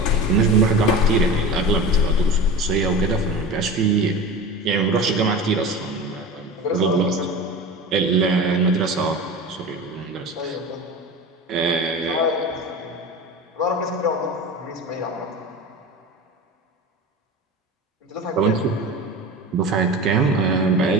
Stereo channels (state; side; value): normal; both; correlation 0.31